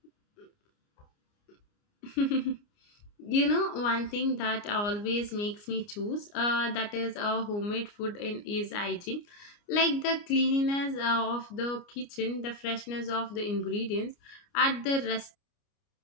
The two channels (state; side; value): late; right; 29 ms